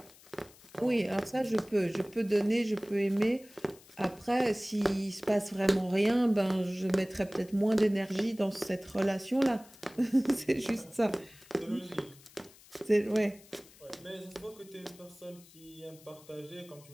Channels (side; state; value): left; noise; hiss, 24 dB below the sound